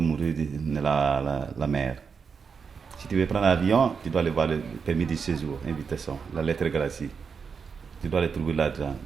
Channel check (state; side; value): quieter; left; 5.9 dB